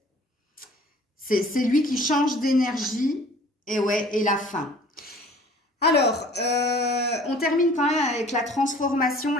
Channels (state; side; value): normal; both; correlation 0.50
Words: C'est lui qui change d'énergie. Et ouais, et la fin. Alors, on termine quand même avec la transformation,